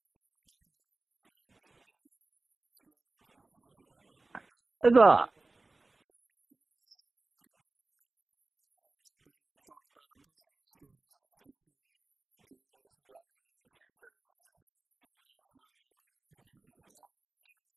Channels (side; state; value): left; quieter; 3.3 dB